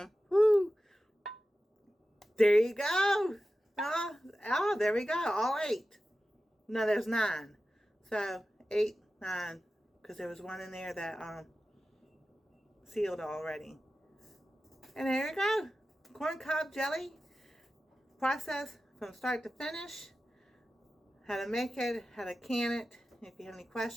Woo! There you go. Oh, there we go, all 8. No, there's 9. So 8, 9, because there was one in there that sealed already. And there you go. Corn cob jelly. Process from start to finish. How to make it, how to can it. If you have any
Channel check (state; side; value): normal; both; correlation 0.93